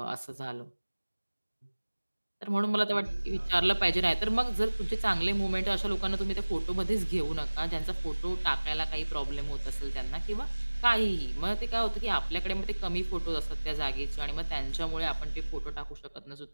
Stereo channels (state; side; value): inverted; both; correlation -1.00